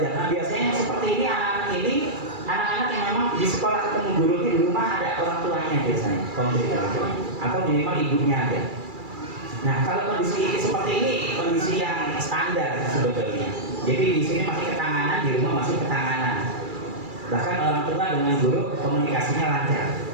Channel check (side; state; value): left; late; 2.3 ms